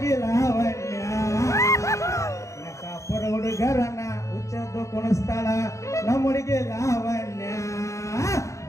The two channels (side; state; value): right; late; 0.15 ms